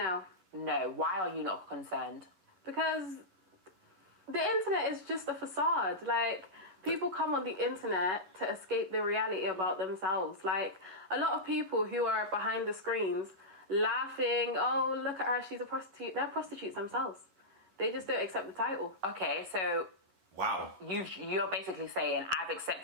No. Why are you not concerned? Because the internet is just a facade. Like, people come on the internet to escape the reality about themselves. Like, a lot of people who are behind the screens laughing, oh, look at her, she's a prostitute. They're prostitutes themselves. They just don't accept the title. Okay, so... Wow. You're basically saying, I've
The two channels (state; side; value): late; left; 11 ms